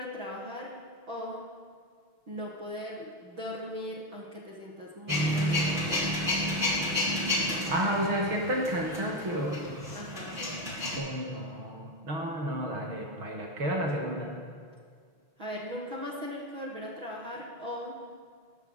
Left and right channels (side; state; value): left; late; 6.3 ms